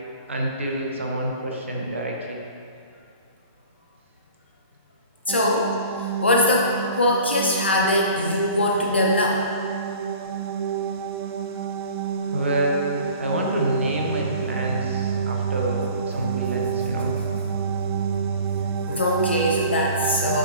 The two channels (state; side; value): inverted; both; correlation -0.45